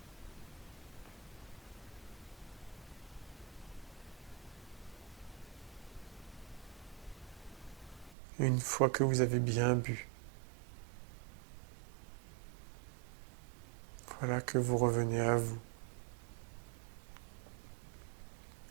Une fois que vous avez bien bu, voilà que vous revenez à vous.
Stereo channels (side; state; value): left; drops out; at 8.2 s